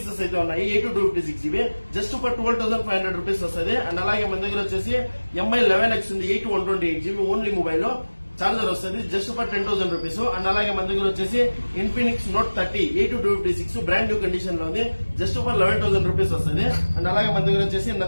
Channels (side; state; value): both; inverted; correlation -1.00